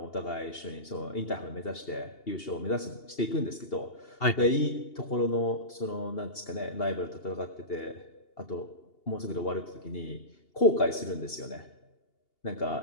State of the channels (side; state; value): right; late; 2.8 ms